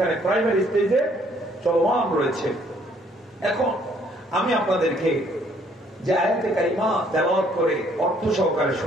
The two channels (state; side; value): normal; both; correlation 0.64